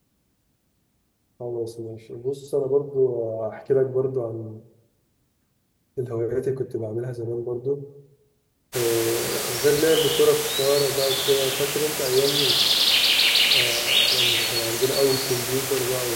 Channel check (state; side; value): identical; both; correlation 1.00